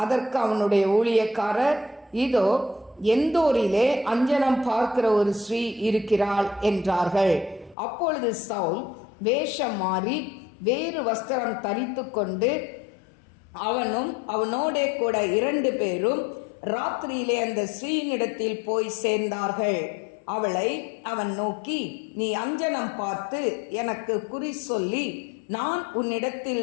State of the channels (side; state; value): right; drops out; at 7.8 s